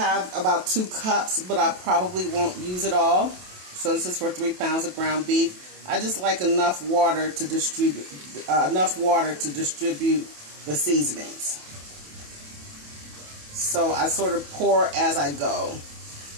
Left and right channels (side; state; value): left; late; 27 ms